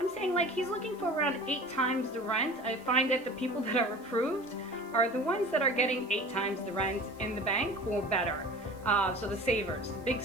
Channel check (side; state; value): right; noise; hiss, 27 dB below the sound